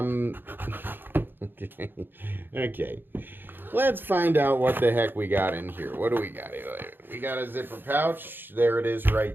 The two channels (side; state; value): left; late; 0.097 ms